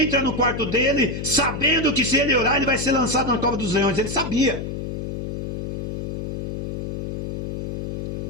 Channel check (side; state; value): left; noise; hum, 4 dB below the sound